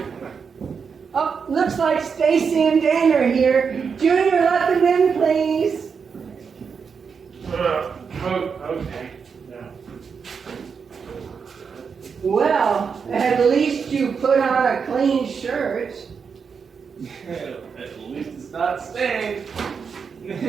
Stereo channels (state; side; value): quieter; left; 6.0 dB